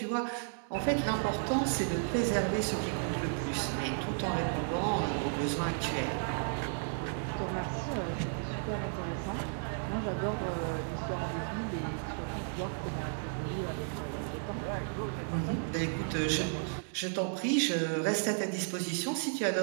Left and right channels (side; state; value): left; silent; 55 dB below the other